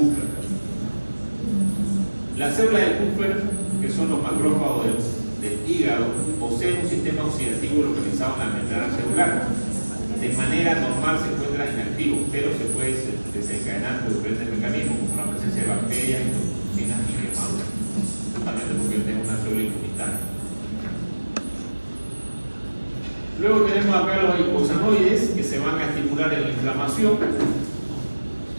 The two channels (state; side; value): inverted; both; correlation -1.00